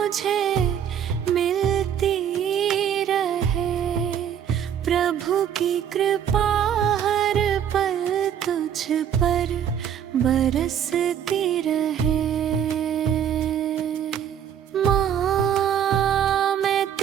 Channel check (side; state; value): left; quieter; 9.0 dB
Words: मिलती रहे, प्रभु की कृपा हर पल तुझ पर बरसती रहे। माँ मैं